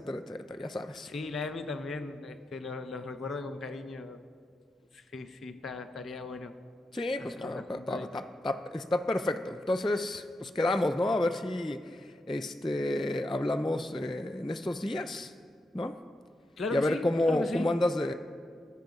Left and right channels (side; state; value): both; normal; correlation 0.86